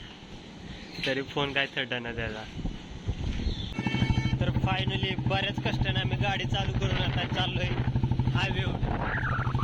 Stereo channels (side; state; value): both; identical; correlation 1.00